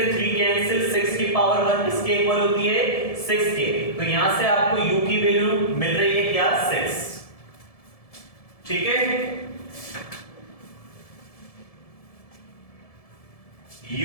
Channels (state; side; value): late; right; 1.7 ms